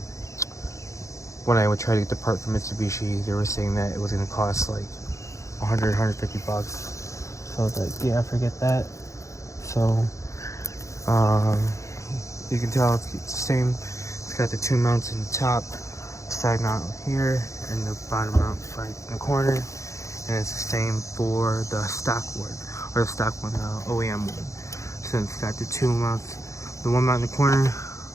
I would try to get the part from Mitsubishi, they were saying that it was going to cost like 100, 150 bucks. So I was like, yeah, forget that. So, you can tell it's the same. It's got the two mounts in the top, side mount here, and the bottom mount right in the corner. And it's the same for the stock one, or the stock one, the OEM one. So it's got the two mounts, the one mount in the corner,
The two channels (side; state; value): right; late; 0.15 ms